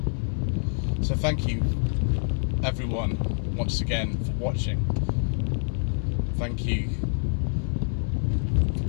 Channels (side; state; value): right; silent; digital silence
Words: So thank you everyone once again for watching. Thank you for